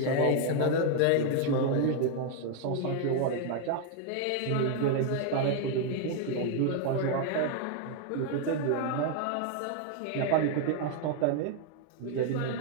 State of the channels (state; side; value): different; both; correlation 0.00